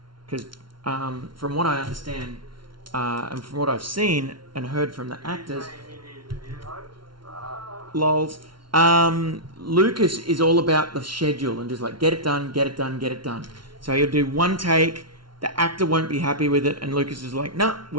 Because from what I understand, and from what I've seen and heard from the actors, lols, Lucas is all about the schedule and just like, get it done, get it done, get it done. So he'll do one take, the actor won't be happy with it, and Lucas is like, no,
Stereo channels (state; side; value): late; left; 0.73 ms